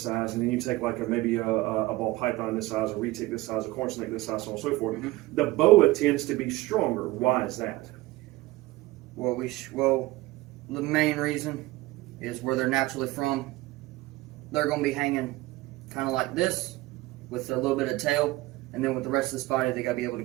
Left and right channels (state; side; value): quieter; left; 19.1 dB